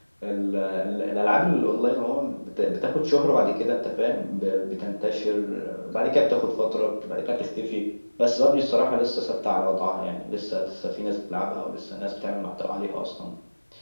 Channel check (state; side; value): inverted; both; correlation -1.00